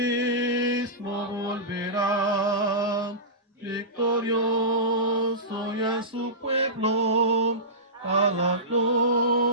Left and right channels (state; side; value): normal; both; correlation -0.19